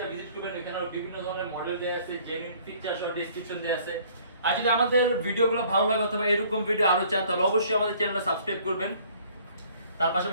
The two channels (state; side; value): inverted; both; correlation -0.57